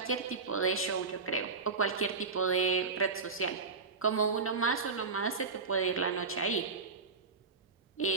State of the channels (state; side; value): quieter; left; 4.5 dB